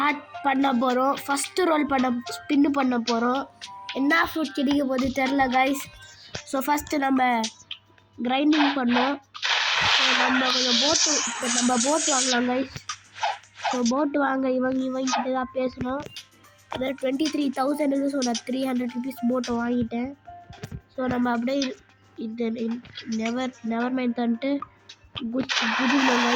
பண்ண போகிறோம். ஃபஸ்ட்டு ரோல் ஸ்பின்னு பண்ண போகிறோம். என்ன ஃப்ரூட் கிடைக்க போது தெரில கைஸ். ஸோ ஃபஸ்ட்டு நம்ம கிரைண்டிங் பண்ணோம். ஸோ நம்ம கொஞ்சம் போட்டு வாங்கலாம் கைஸ். ஸோ போட்டு வாங்க இவங்கிட்ட தான் பேசணும். அதாவது 23,000. ஸோ நான் 300 rupees போட்டு வாங்கிட்டேன். ஸோ நம்ம அப்படியே இது நெவர் மைண்ட் தந்துட்டு குதிக்கணும்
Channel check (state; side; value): identical; both; correlation 1.00